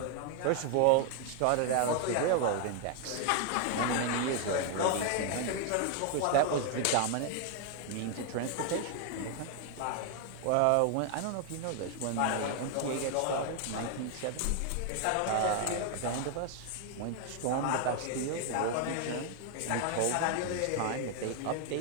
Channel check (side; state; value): both; different; correlation 0.00